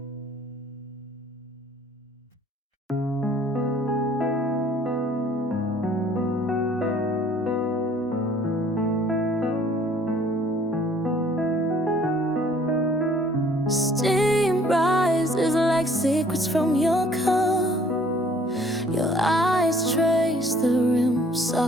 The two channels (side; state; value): both; normal; correlation 0.57